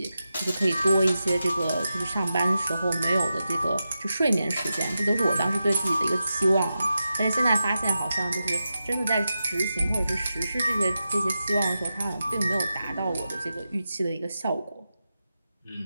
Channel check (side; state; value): both; inverted; correlation -0.90